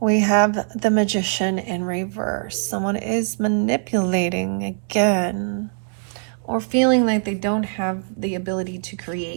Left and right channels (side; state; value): left; silent; 64 dB below the other